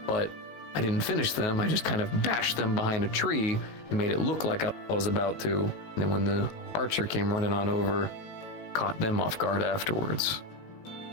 But I didn't finish them, I just kind of bashed them behind a tree and made it look like I was about to. And then when the archer came running on over, caught them off guard afterwards.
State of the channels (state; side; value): late; right; 19 ms